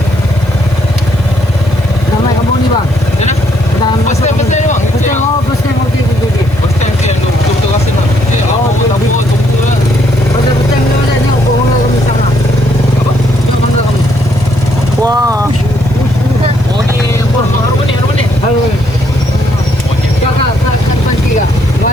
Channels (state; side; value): noise; right; hiss, 26 dB below the sound